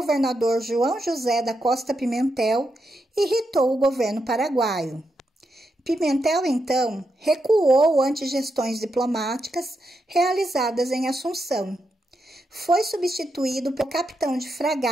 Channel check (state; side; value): normal; both; correlation 0.84